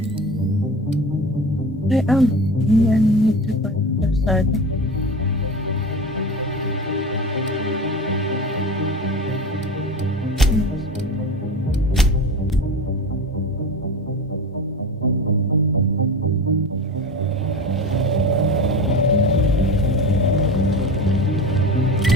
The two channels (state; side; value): normal; both; correlation 0.30